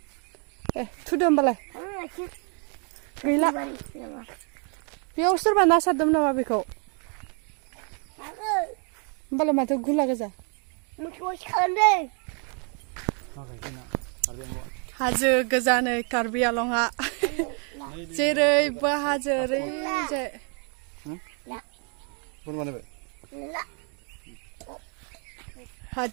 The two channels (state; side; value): quieter; left; 38.4 dB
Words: थुदो होमबालाय गैला बेयाव सोरबा ना सारदोंमोन नामा बेखौ होमबालाय माथो गुला गोजा हाजो गोजानै कार्बि आलंआ जेरैबो हाजो ओरैजाय